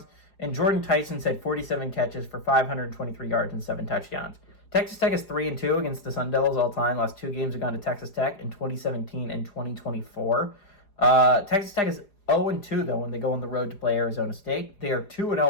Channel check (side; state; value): right; late; 4.9 ms